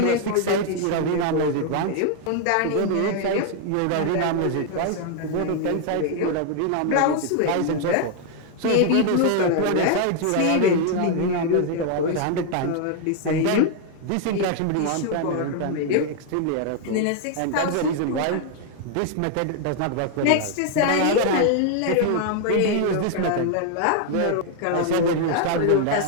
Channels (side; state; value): both; different; correlation 0.00